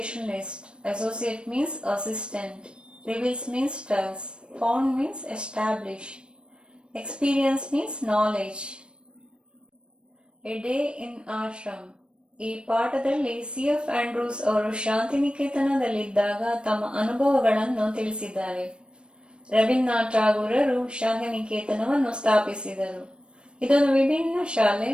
Associate means assistant. Reveals means tells. Found means establish. Experience means knowledge. A day in ashram. ಈ ಪಾಠದಲ್ಲಿ C F. Andrews ಅವರು ಶಾಂತಿನಿಕೇತನದಲ್ಲಿದ್ದಾಗ ತಮ್ಮ ಅನುಭವಗಳನ್ನು ತಿಳಿಸಿದ್ದಾರೆ. ರವೀಂದ್ರನಾಥ್ ಟಾಗೂರರು ಶಾಂತಿನಿಕೇತನವನ್ನು ಸ್ಥಾಪಿಸಿದರು. ಇದೊಂದು ವಿಭಿನ್ನ ಶಾಲೆ.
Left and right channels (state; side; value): late; left; 0.056 ms